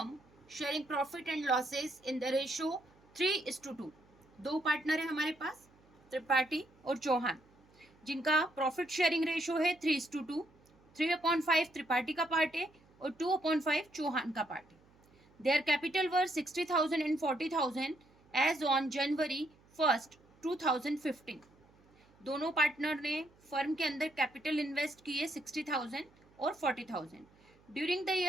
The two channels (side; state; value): right; noise; hum, 30 dB below the sound